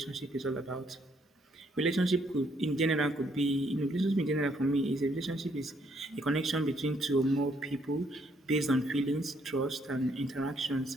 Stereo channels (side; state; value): both; normal; correlation 0.70